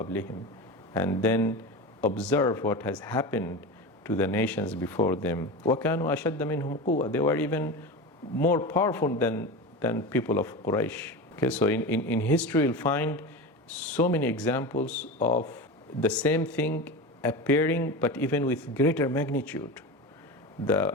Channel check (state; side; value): normal; both; correlation 0.26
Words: And then observe what has happened to the nations before them. وَكَانُوا أَشَدَّ مِنْهُمْ قُوَّةً. They were even more powerful than people of Quraysh. Okay, so in history you'll find so many examples of the same thing appearing, but even with greater magnitude.